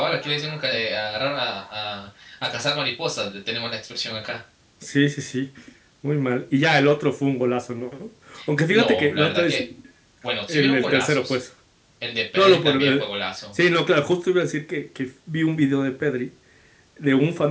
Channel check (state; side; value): identical; both; correlation 1.00